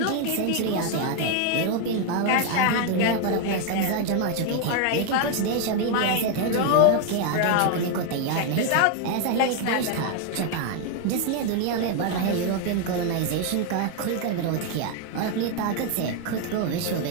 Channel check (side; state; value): both; different; correlation 0.01